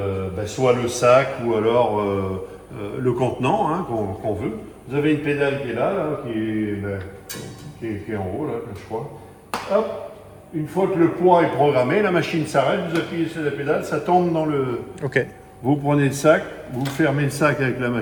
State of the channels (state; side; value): identical; both; correlation 1.00